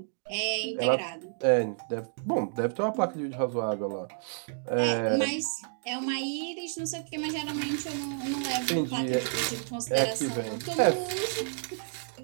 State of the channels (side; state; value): left; silent; digital silence